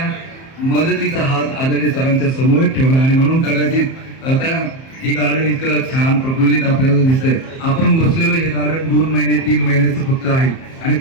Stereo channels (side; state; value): right; late; 30 ms